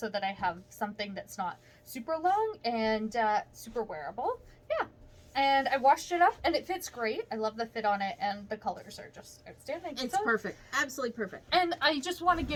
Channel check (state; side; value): identical; both; correlation 1.00